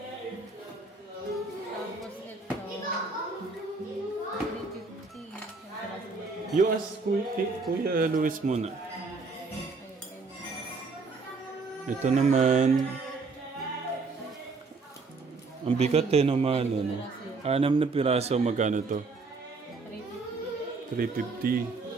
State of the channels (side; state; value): left; quieter; 4.1 dB